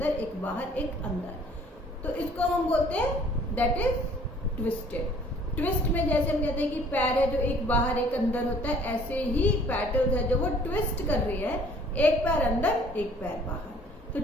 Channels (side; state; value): both; normal; correlation 0.55